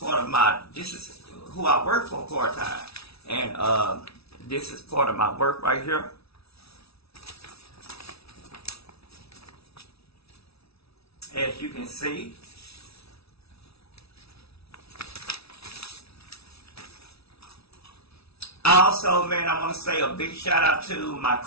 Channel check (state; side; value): late; right; 0.77 ms